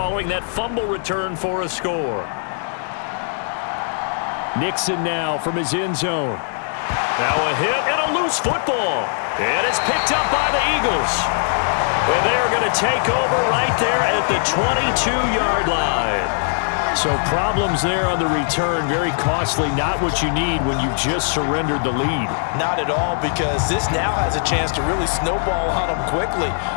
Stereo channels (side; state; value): right; silent; digital silence